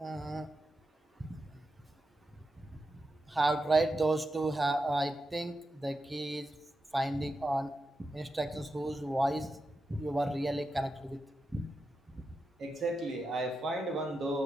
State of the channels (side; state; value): both; normal; correlation 0.88